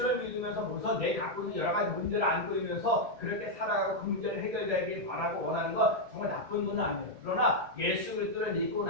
믿으면서 우선 내 갖고 있는 여러 가지 문제를 안고 있면서 그렇게 살아가고 그 문제를 해결되길 바라고 원하는 거 정말 나쁜 분은 아니에요. 그러나 예수 그리스도를 믿고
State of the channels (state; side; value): late; left; 1.7 ms